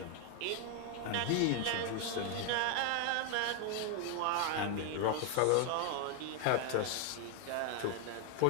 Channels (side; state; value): both; different; correlation 0.01